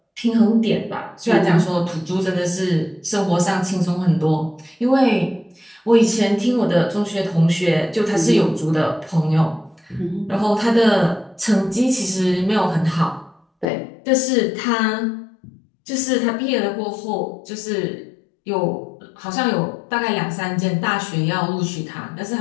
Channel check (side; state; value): right; drops out; at 13.7 s